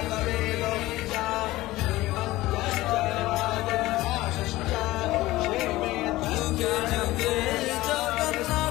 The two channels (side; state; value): right; quieter; 17.8 dB